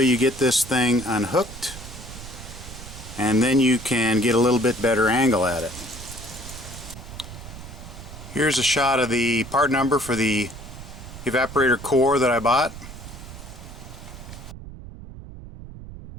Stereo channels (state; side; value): noise; right; rumble, 13 dB below the sound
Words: you get this thing unhooked, and then you can get a little bit better angle at it. Here's a shot of the part number for the evaporator core that I bought.